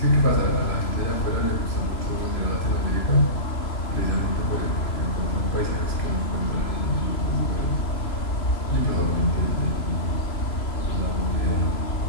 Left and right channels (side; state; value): right; late; 3.0 ms